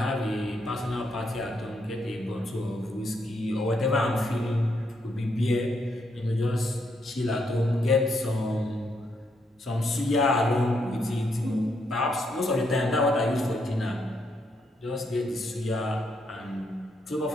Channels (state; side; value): normal; both; correlation 0.77